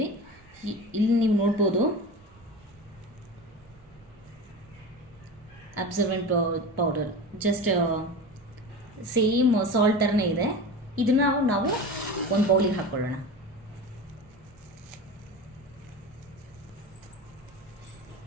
ಇಲ್ಲಿ ನೀವು ನೋಡ್ಬೋದು absorbent powder, just same salt ಥರನೇ ಇದೆ. ಇದನ್ನು ನಾವು ಒಂದು ಬೌಲಿಗೆ ಹಾಕ್ಕೊಳ್ಳೋಣ.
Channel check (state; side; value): normal; both; correlation 0.29